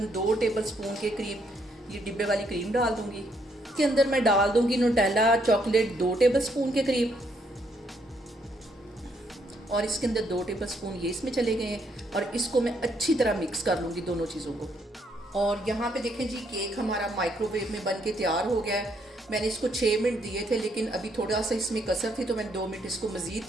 2 टेबलस्पून के करीब ये डिब्बे वाली क्रीम डाल दूँगी। इसके अंदर मैं डाल दूँगी न्यूटेला चॉकलेट 2 टेबलस्पून के करीब, और इसके अंदर 2 टेबलस्पून ये इसमें चले गए हैं। और इसको मैं अच्छी तरह मिक्स कर लूँगी दोनों चीज़ों को। और यहाँ पे देखें जी, केक हमारा माइक्रोवेव में बन के तैयार हो गया है। मैंने इसको 6 मिनट दिए थे, लेकिन अभी थोड़ा सा इसमें कसर थी तो मैंने 2 मिनट इसको मज़ीद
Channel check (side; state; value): both; normal; correlation 0.72